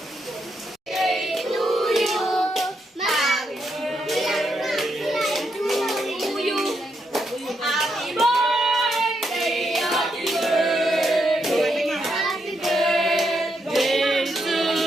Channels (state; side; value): normal; both; correlation 0.80